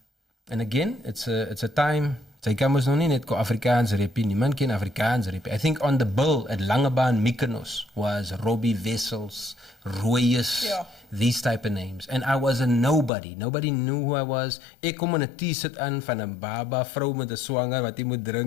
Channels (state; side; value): drops out; right; at 13.1 s